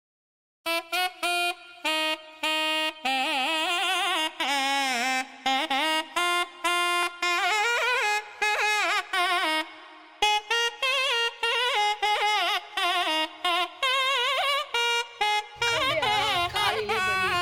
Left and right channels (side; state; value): both; identical; correlation 1.00